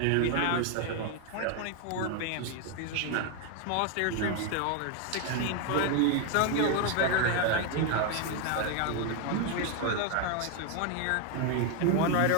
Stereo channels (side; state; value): both; different; correlation 0.01